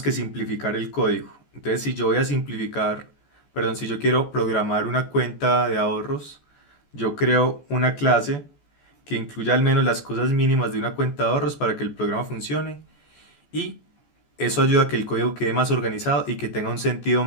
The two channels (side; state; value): right; late; 14 ms